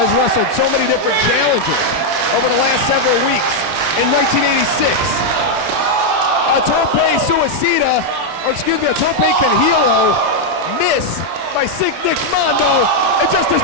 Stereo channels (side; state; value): left; late; 31 ms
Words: wrestled so many different challengers over the last several weeks. In 1986, a tope suicida, or excuse me, a tope canhilo miss by Sick Nick Mondo, and Justice